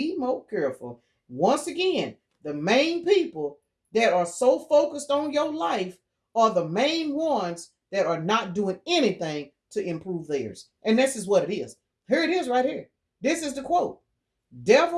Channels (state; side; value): identical; both; correlation 1.00